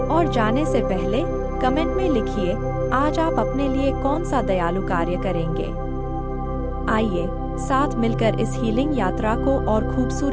और जाने से पहले कमेंट में लिखिए, आज आप अपने लिए कौन सा दयालु कार्य करेंगे। आइए साथ मिलकर इस हीलिंग यात्रा को और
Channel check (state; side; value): identical; both; correlation 1.00